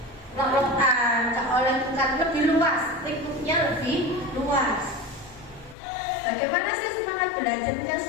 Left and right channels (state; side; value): drops out; right; at 5.8 s